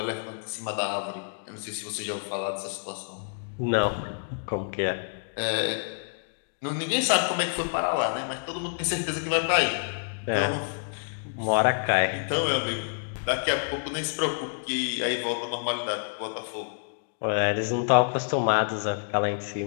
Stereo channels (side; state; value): right; silent; digital silence